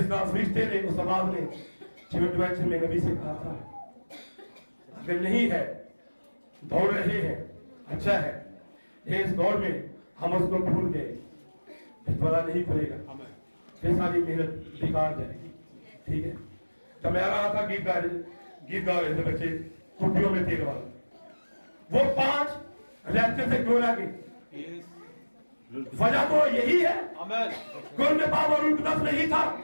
फरिश्ते ने, उस आवाज ने एडवेंचर में नबी से कहा था, अगर नहीं है, दौड़ रहे हैं, अच्छा है, इस दौड़ में हम उसको भूल गए, पता नहीं पड़ेगा, फिर सारी मेहनत बेकार जाएगी। ठीक है। जब मैं आ रहा था गीत गा रहे थे बच्चे टुकड़ियों में तेल वाला, वो 5 लेक्चर से क्यों लगे? वजह तो यही है, कोई में पावर रूह कुदस नहीं था।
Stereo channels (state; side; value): inverted; both; correlation -1.00